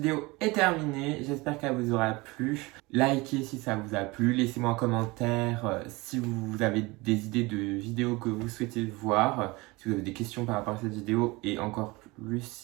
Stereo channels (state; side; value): quieter; left; 23.4 dB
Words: est terminée, j'espère qu'elle vous aura plu. Likez si ça vous a plu, laissez-moi un commentaire si vous avez des idées de vidéos que vous souhaitez voir, si vous avez des questions par rapport à cette vidéo et encore plus